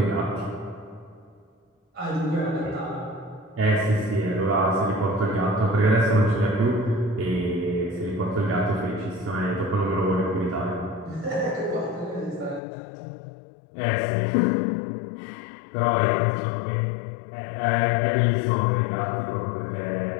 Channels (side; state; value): right; drops out; at 12.6 s